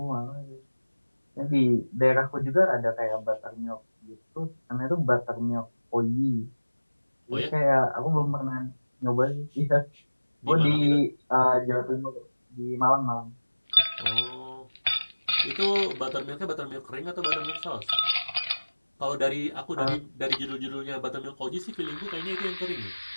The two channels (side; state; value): both; inverted; correlation -1.00